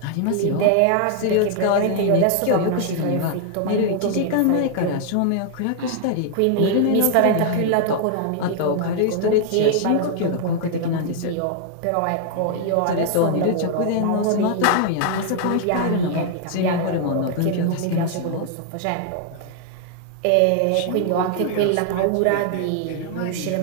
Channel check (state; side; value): different; both; correlation 0.00